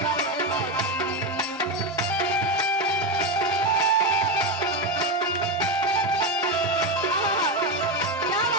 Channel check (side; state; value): both; normal; correlation 0.12